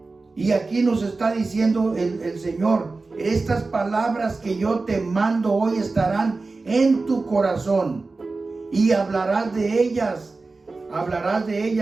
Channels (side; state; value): left; quieter; 3.7 dB